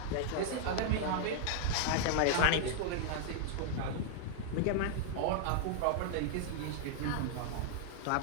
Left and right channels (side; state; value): both; different; correlation -0.01